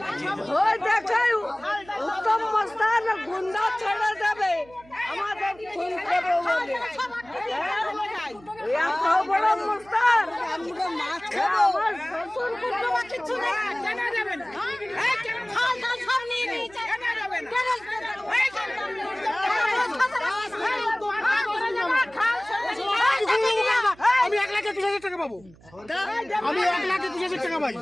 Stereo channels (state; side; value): noise; right; hum, 25 dB below the sound